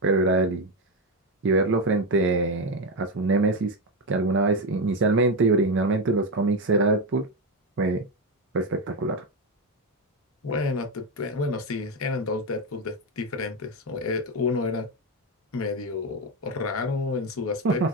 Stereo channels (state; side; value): normal; both; correlation 0.10